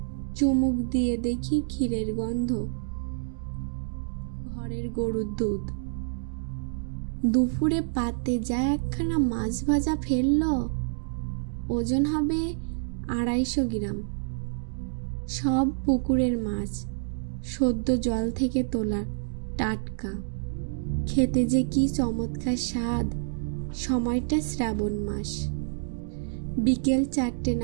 চুমুক দিয়ে দেখি ক্ষীরের গন্ধ, ঘরের গরুর দুধ। দুপুরে পাতে যা একখানা মাছ ভাজা ফেলল, ওজন হবে 250 গ্রাম। সব পুকুরের মাছ, সদ্য জল থেকে তোলা, টাটকা। খেতে যে কি চমৎকার স্বাদ। সময়টা শ্রাবণ মাস। বিকেল 4টে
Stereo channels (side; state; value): left; silent; digital silence